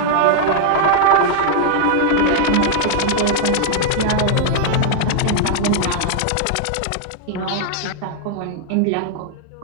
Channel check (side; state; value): both; different; correlation -0.01